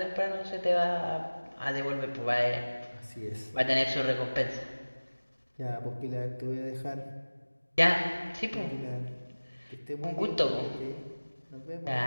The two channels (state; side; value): inverted; both; correlation -1.00